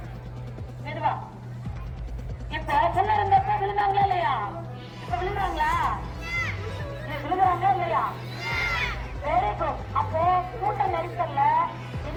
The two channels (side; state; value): both; identical; correlation 1.00